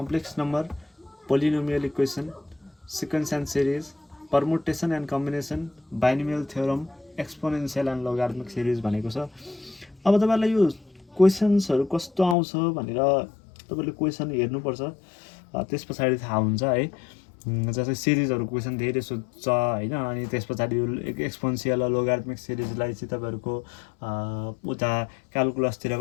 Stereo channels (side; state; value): right; drops out; at 12.4 s